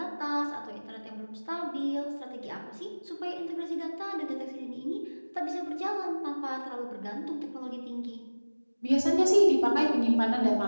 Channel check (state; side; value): inverted; both; correlation -1.00